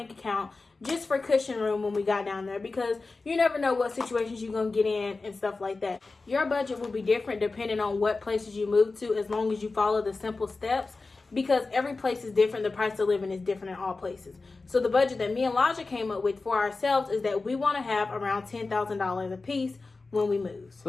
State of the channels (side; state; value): right; quieter; 3.7 dB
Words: account just for cushion room when we got down there, because you never know what situations you're going to get in and stuff like that. Your budget will be different depending on what places you move to, as long as you follow the simple steps, because every place is different. The price of living is different in all places. So the budget that me and Elijah came up with for ourselves is that we want to have around $10,000 a piece when we move,